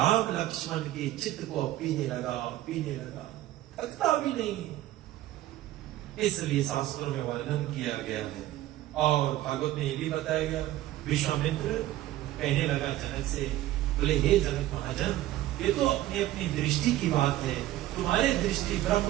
लक्ष्मण के चित्त को पीने लगा, थकता भी नहीं। इसलिए शास्त्रों में वर्णन किया गया है। और भागवत में ये भी बताया गया, विश्वामित्र कहने लगा जनक से, बोले हे जनक महाजन, ये तो अपनी अपनी दृष्टि की बात है, तुम्हारी दृष्टि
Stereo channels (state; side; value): quieter; left; 14.8 dB